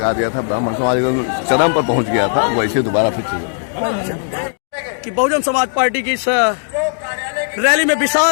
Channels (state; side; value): silent; right; digital silence